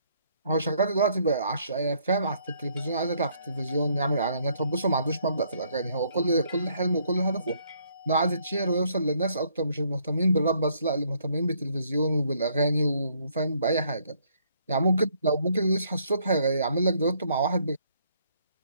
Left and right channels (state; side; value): inverted; both; correlation -0.67